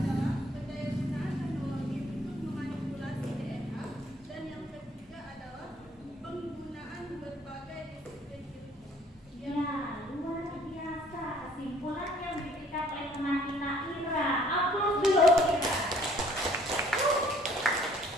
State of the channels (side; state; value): both; normal; correlation 0.58